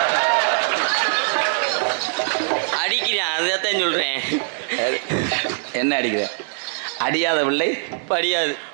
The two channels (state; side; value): silent; left; digital silence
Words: அடிக்கிறான். அதைத்தான் சொல்கிறேன். என்ன அடிக்கிற? அடியாத பிள்ளை படியாது.